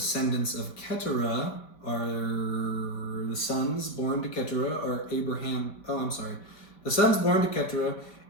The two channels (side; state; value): right; late; 5.1 ms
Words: of Keturah are the sons born to Keturah are Abraham. The sons born to Keturah,